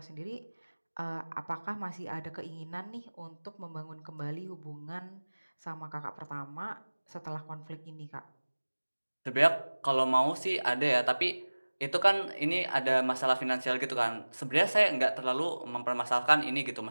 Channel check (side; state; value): both; inverted; correlation -1.00